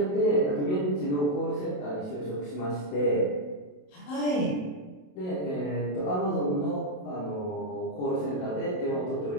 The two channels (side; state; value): right; late; 27 ms